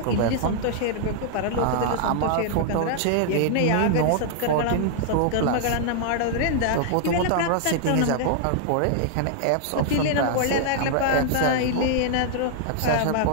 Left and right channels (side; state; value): both; different; correlation -0.01